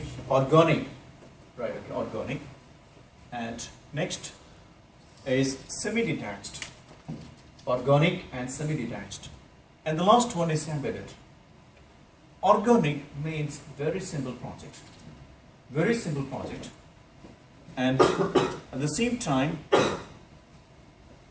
organic. Right, okay, organic. And next is semi-detached. Organic and semi-detached. And the last one is embedded. Organic means very simple project. Very simple project. And at the same time,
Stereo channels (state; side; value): identical; both; correlation 1.00